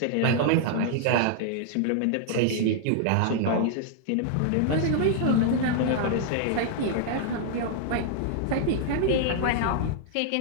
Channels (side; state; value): both; different; correlation 0.00